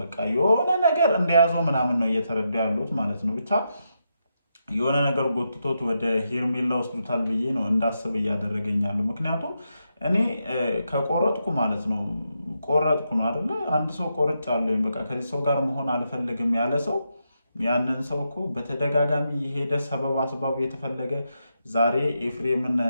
የሆነ ነገር እንደያዘው ምናምን ነው እየተረዱ ያሉት ማለት ነው። ብቻ የሆነ ነገር ጎትቶት ወደ ሄርሜላ ወስዱታል ብዬ ነው እንዳስብ እያደረገኛሉ። ምክንያቱም እኔ ከቆረጥኩ ማለት ነው ቆረጥኩ ነው አይደለ? አንድ ሰው ቆርጫለሁ በቃ ከዚህ ሰው ጋር መሆን አልፈልግም ያለ ሰው ያንን ሰው እኮ በተደጋጋሚ የሄደ ሰበብ አስባብ የተፈለገ ዛሬ ኤፍሬምን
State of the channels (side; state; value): both; inverted; correlation -0.83